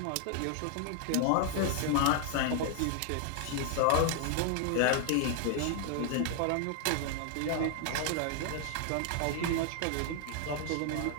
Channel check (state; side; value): different; both; correlation 0.00